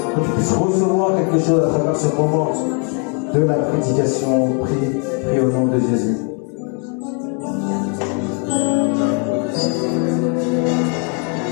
puisses recevoir quelque chose à travers ce moment de la prédication. Prie au nom de Jésus.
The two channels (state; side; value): quieter; right; 38.3 dB